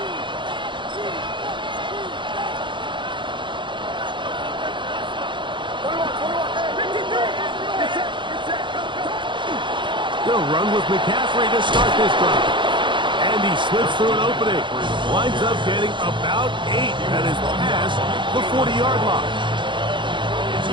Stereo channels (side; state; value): left; late; 0.23 ms